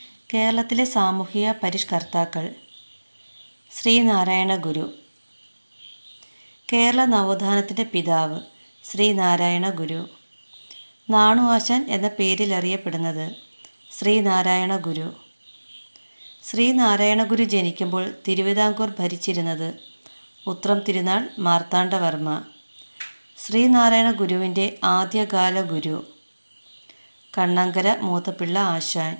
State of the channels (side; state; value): both; inverted; correlation -1.00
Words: കേരളത്തിലെ സാമൂഹിക പരിഷ്കർത്താക്കൾ: ശ്രീനാരായണ ഗുരു. കേരള നവോത്ഥാനത്തിൻ്റെ പിതാവ് ശ്രീനാരായണ ഗുരു. നാണു ആശാൻ എന്ന പേരിൽ അറിയപ്പെടുന്നത് ശ്രീനാരായണ ഗുരു. ശ്രീനാരായണ ഗുരു ജനിക്കുമ്പോൾ തിരുവിതാംകൂർ ഭരിച്ചിരുന്നത് ഉത്രം തിരുനാൾ മാർത്താണ്ഡവർമ്മ. ശ്രീനാരായണ ഗുരുവിൻ്റെ ആദ്യകാല ഗുരു കണ്ണങ്കര മൂത്തപിള്ള ആശാൻ.